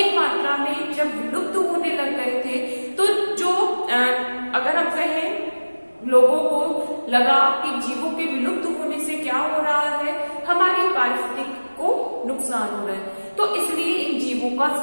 मात्रा में जब विलुप्त होने लग गए थे, तो जो अगर हम कहें लोगों को लगा कि जीवों के विलुप्त होने से क्या हो रहा है, हमारी पारिस्थितिकी को नुकसान हो रहा है, तो इसलिए इन जीवों का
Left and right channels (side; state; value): both; inverted; correlation -1.00